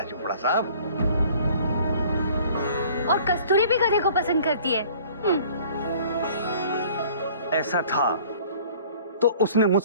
चोपड़ा साहब। और कस्तूरी भी गधे को पसंद करती है। ऐसा था तो उसने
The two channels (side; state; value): both; inverted; correlation -0.52